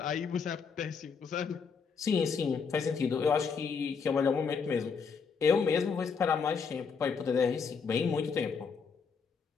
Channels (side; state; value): right; quieter; 5.7 dB